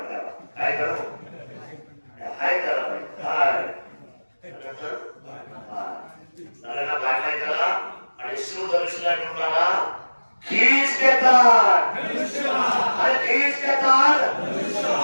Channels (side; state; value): both; inverted; correlation -1.00